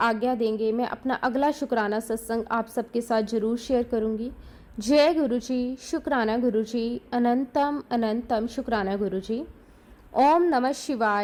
देंगे मैं अपना अगला शुक्राना सत्संग आप सबके साथ जरूर शेयर करूंगी। जय गुरुजी, शुक्राना गुरुजी, अनंतम अनंतम शुक्राना गुरुजी। ओम नमः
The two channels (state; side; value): identical; both; correlation 1.00